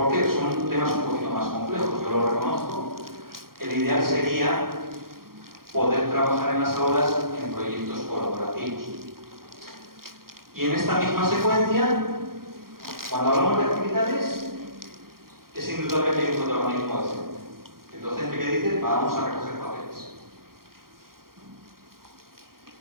qué? Son temas un poquito más complejos, yo lo reconozco. El ideal sería poder trabajar en las aulas en proyectos colaborativos. Y en esta misma secuencia, cuando hablamos de actividades, es indudable que hay un protagonismo docente. El docente que dice, vamos a recoger papeles.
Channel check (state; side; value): late; left; 0.92 ms